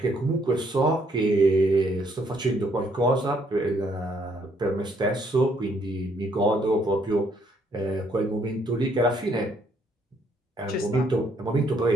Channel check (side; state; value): both; normal; correlation 0.69